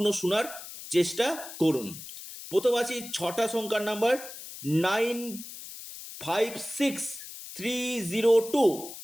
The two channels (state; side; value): noise; left; hiss, 12 dB below the sound